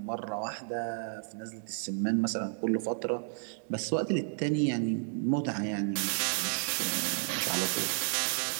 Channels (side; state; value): left; silent; 56 dB below the other